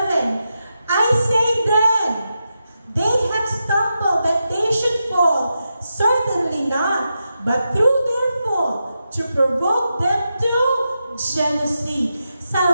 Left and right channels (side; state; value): both; inverted; correlation -0.88